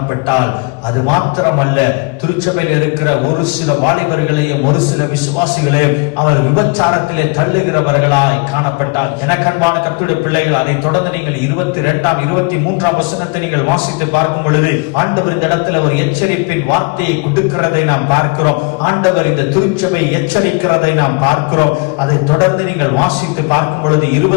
அது மாத்திரமல்ல, திருச்சபையில் இருக்கிற ஒரு சில வாலிபர்களையும் ஒரு சில விசுவாசிகளையும் அவர் விபச்சாரத்திலே தள்ளுகிறவர்களாய் காணப்பட்டால். எனக்கன்பான கர்த்தருடைய பிள்ளைகள், அதை தொடர்ந்து நீங்கள் 22ஆம் 23ஆம் வசனத்தை நீங்கள் வாசித்து பார்க்கும் பொழுது ஆண்டவர் இந்த இடத்துல ஒரு எச்சரிப்பின் வார்த்தையை கொடுக்கிறதை நாம் பார்க்கிறோம். ஆண்டவர் இந்த திருச்சபை எச்சரிக்கிறதை நாம் பார்க்கிறோம். அதை தொடர்ந்து நீங்கள் வாசித்து பார்க்கும் பொழுது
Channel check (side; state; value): right; quieter; 29.9 dB